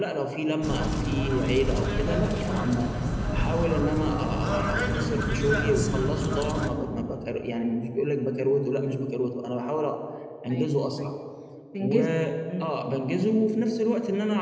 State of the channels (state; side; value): identical; both; correlation 1.00